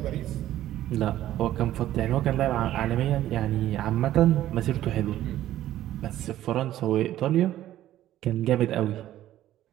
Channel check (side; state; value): left; quieter; 13.3 dB